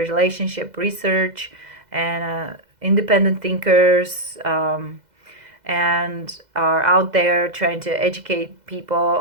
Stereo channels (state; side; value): late; left; 2.0 ms